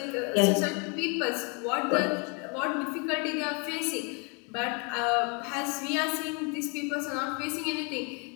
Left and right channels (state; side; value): quieter; right; 33.8 dB